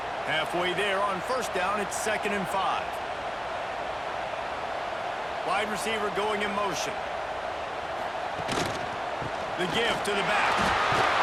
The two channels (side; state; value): both; identical; correlation 1.00